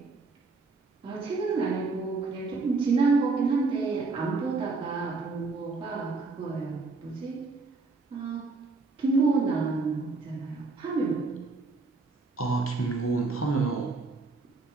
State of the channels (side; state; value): left; quieter; 3.8 dB